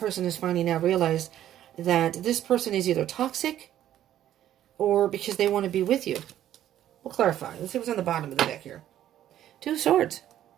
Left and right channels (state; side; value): quieter; left; 11.8 dB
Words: has finally now realized that this person is either toxic or because they want to be with you. We'll clarify. Let's see what's on the bottom of the deck here. 2 of Swords.